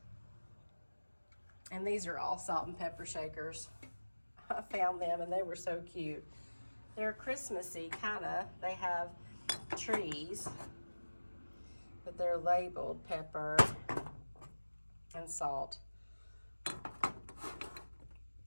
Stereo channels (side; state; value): both; inverted; correlation -1.00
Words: And these are all salt and pepper shakers. I found them and they were so cute. They're Christmassy, kind of. They have trees, but they're labeled pepper and salt.